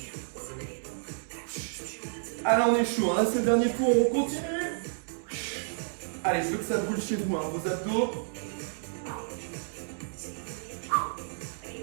Ah là, on est chaud. Là, c'est le dernier tour. On continue. Allez, je veux que ça brûle chez vous, hein, vos abdos.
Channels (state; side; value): silent; left; digital silence